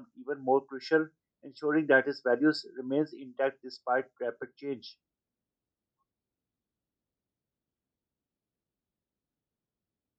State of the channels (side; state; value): both; identical; correlation 1.00